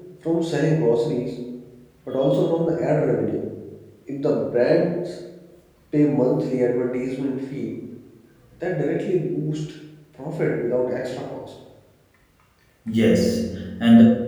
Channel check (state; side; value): identical; both; correlation 1.00